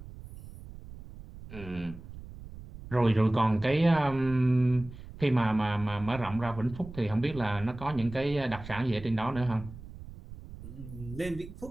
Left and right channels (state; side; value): noise; right; rumble, 15 dB below the sound